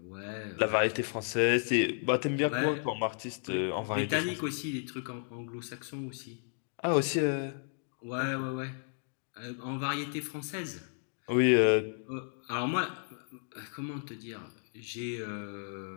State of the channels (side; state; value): right; silent; 56 dB below the other